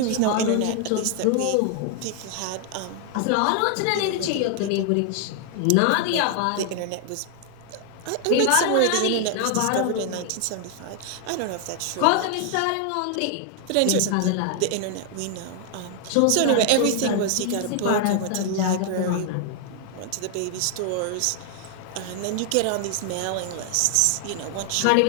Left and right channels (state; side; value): different; both; correlation 0.00